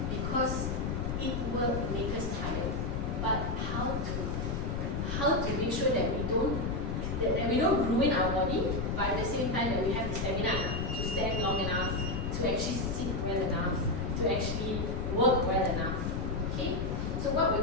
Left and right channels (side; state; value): left; noise; rumble, 2 dB below the sound